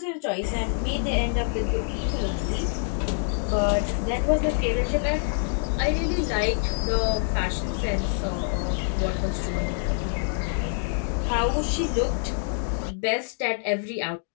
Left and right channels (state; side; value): silent; right; 61 dB below the other